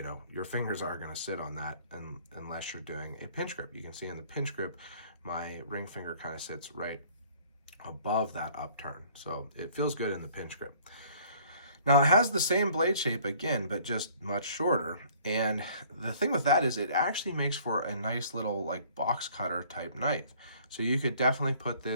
fingers are going to sit on that unless you're doing a pinch grip. You can see in the pinch grip, my ring finger kind of sits right above that upturn. So it feels good in the pinch grip. Now it has the same blade shape again, but just much shorter. And the thing with that is it actually makes for a nice little like box cutter type knife. So you could definitely put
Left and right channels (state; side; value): inverted; both; correlation -0.56